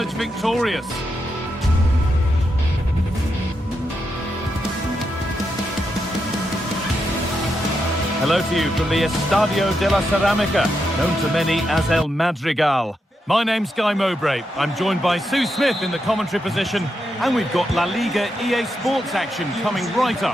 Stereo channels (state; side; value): normal; both; correlation 0.84